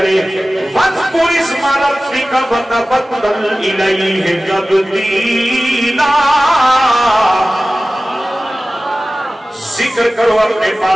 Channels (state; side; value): normal; both; correlation 0.96